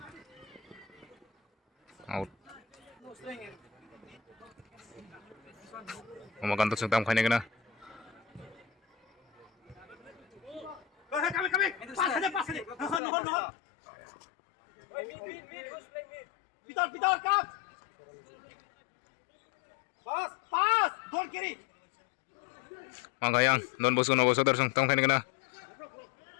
Out. Umakan tusong tam kena. Pitar kap. Pas, don kiri. Maka yang Don Bosco Novosodar song tam kena.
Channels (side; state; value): right; drops out; at 13.0 s